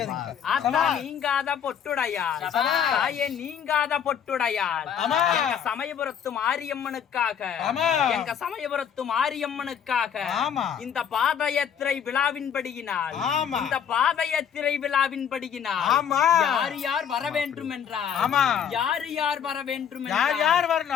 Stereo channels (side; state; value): right; quieter; 8.3 dB